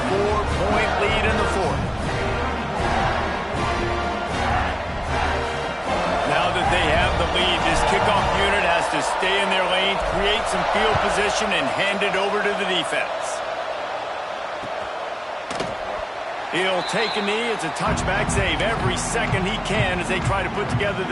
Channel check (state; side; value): identical; both; correlation 1.00